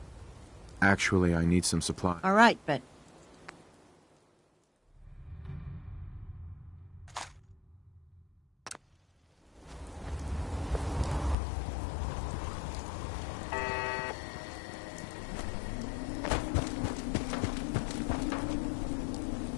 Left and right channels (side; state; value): right; drops out; at 11.4 s